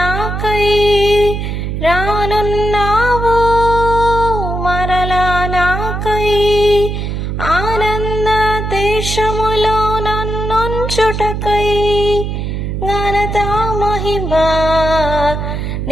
రానున్నావు మరలా నాకై. ఆనంద దేశములో నన్నుంచుటకై, ఘనత మహిమా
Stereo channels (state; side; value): noise; right; hum, 3 dB below the sound